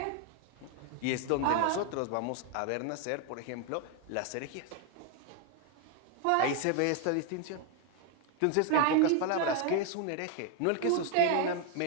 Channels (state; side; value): different; both; correlation 0.01